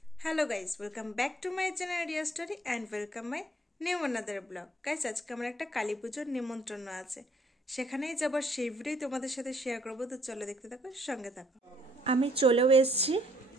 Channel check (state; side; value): normal; both; correlation 0.64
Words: Hello guys, welcome back to my channel Riya story and welcome my new another blog. Guys, আজকে আমার একটা কালী পুজোর নিমন্ত্রণ আছে, সেখানেই যাবার সেই ভিডিওই তোমাদের সাথে শেয়ার করবো। তো চলো দেখতে থাকো, সঙ্গে থাকো। আমি চলেও এসেছি